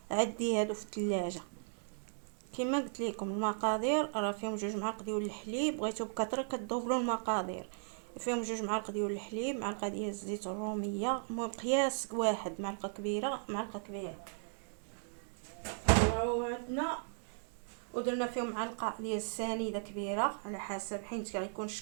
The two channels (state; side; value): silent; left; digital silence